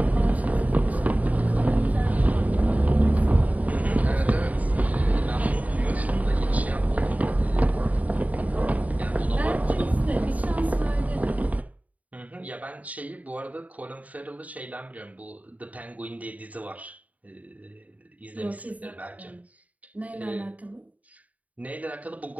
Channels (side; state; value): left; late; 0.072 ms